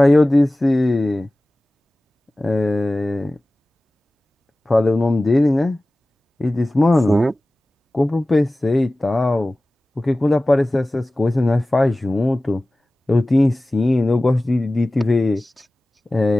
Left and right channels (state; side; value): normal; both; correlation 0.97